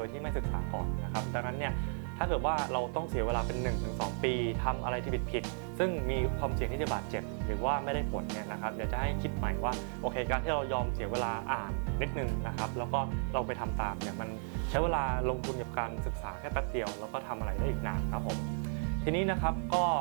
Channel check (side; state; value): left; silent; 55 dB below the other